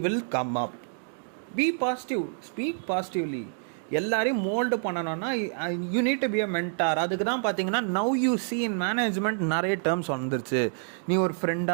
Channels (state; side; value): silent; left; digital silence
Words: will come up. Be positive, speak positively. எல்லாரையும் மோல்டு பண்ணணும்னா you need to be a mentor. அதுக்கு தான் பார்த்தீங்கன்னா now you see in management நிறைய டேர்ம்ஸ் வந்துருச்சு. நீ ஒரு